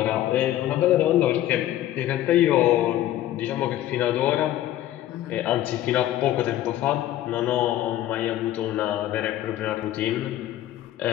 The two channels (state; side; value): quieter; right; 13.2 dB